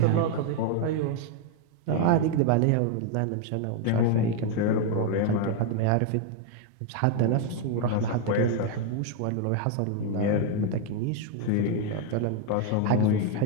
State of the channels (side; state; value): both; different; correlation 0.01